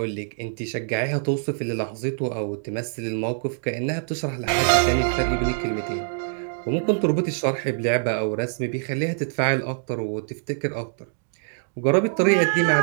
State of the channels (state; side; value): silent; left; 62 dB below the other